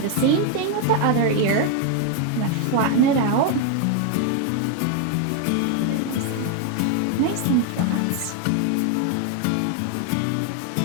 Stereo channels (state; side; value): different; both; correlation 0.01